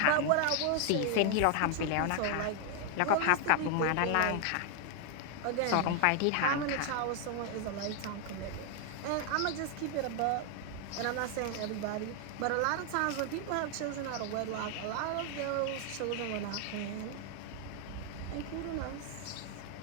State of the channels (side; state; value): both; different; correlation 0.00